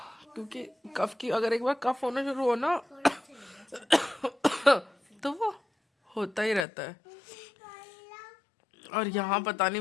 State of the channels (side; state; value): right; drops out; at 6.7 s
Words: क्योंकि कफ की, अगर एक बार कफ होना शुरू हो ना तो वो होता ही रहता है। और यहाँ पता नहीं